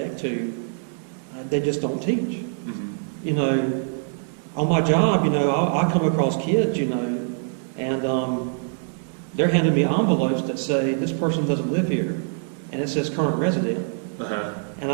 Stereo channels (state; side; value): silent; left; digital silence